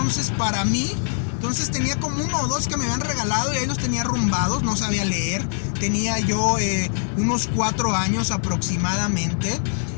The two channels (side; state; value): right; silent; digital silence